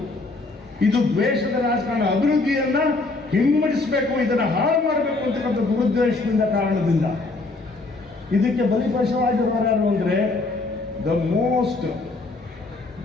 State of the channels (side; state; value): right; quieter; 3.4 dB